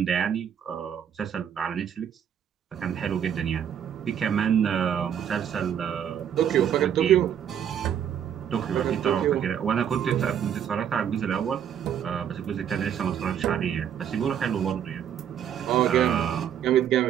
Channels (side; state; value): left; quieter; 9.0 dB